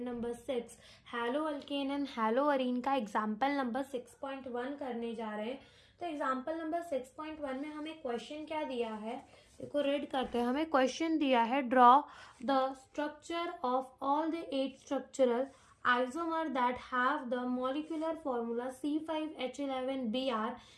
6 halo alkane and halo arene का एग्जाम्पल नंबर 6.1 करने जा रहे हैं। तो एग्जाम्पल नंबर 6.1 में हमें क्वेश्चन क्या दिया है, देखो रीड करते हैं। हमें क्वेश्चन दिया है, draw the structure of all the 8 structural isomer that have the molecular formula C5H11Br.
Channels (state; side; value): identical; both; correlation 1.00